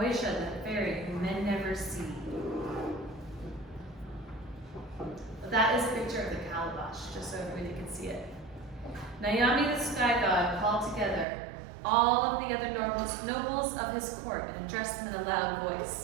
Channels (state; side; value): drops out; left; at 11.2 s